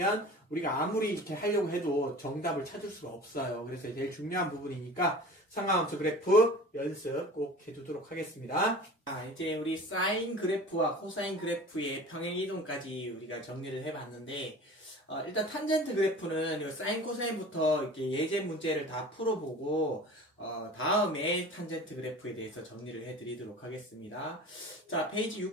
우리가 아무리 이렇게 하려고 해도 정답을 찾을 수가 없어요. 그래서 제일 중요한 부분이니까 삼각함수 그래프 연습 꼭 해두도록 하겠습니다. 이제 우리 사인 그래프와 코사인 그래프의 평행이동까지 우리가 정리를 해봤는데 일단 탄젠트 그래프는 사인 코사인부터 이렇게 예제 문제를 다 풀어보고 다음에 탄젠트 그래프에 대해서 정리를 해드리도록 하겠습니다. 자, 페이지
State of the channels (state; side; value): normal; both; correlation 0.39